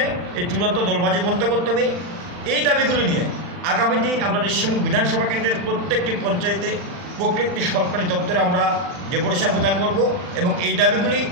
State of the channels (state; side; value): late; left; 40 ms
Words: এই চূড়ান্ত দলবাজি বন্ধ করতে হবে। এই দাবিগুলো নিয়ে আগামী দিন আমরা রিসমুক বিধানসভা কেন্দ্রের প্রত্যেকটি পঞ্চায়েতে প্রত্যেকটি সরকারি দপ্তরে আমরা ডেপুটেশন প্রদান করব এবং এই দাবিগুলি